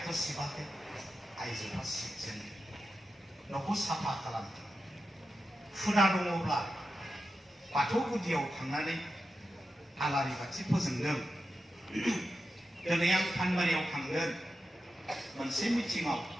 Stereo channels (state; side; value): normal; both; correlation 0.90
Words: सिबाखै आइजोफ्रा सिबजेनो न'खौ साफा खालामदों हुदा दङब्ला बाथौ गुदियाव थांनानै आलारि बाथि फोजोंदों दिनै आं फानबारियाव थांगोन मोनसे मिटिंआव